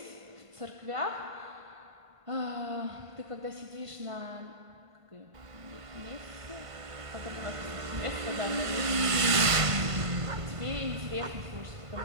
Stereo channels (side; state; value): left; late; 1.5 ms